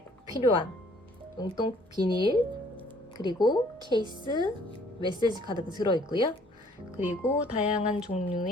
꼭 필요한 용돈 비닐, 그리고 케이스, 메시지 카드가 들어있고요. 그리고 다양한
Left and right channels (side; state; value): both; normal; correlation 0.59